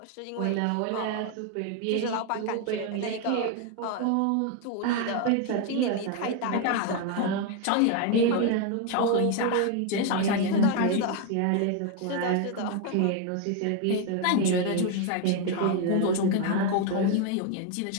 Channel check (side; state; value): both; different; correlation 0.01